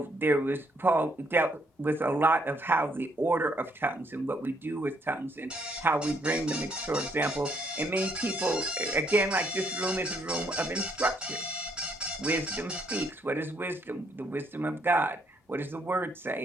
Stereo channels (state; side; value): normal; both; correlation 0.70